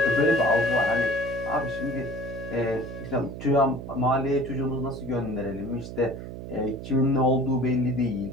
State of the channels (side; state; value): right; noise; hum, 10 dB below the sound